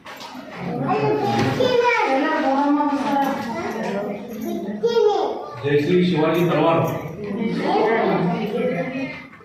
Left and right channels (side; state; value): both; identical; correlation 1.00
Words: ಜಯಶ್ರೀ ಶಿವಾಜಿ ತಲವಾರ್,